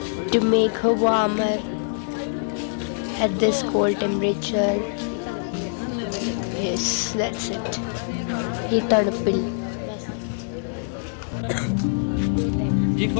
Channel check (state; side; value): silent; right; digital silence